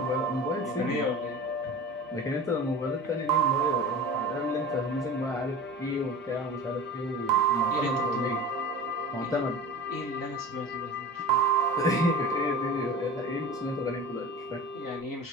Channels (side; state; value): both; normal; correlation 0.36